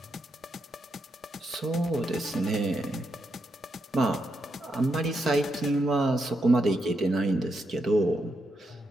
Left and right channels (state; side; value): normal; both; correlation 0.82